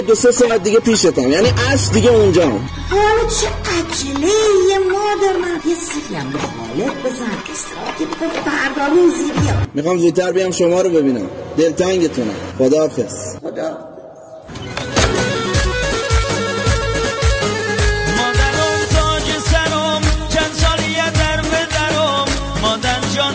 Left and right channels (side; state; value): both; identical; correlation 1.00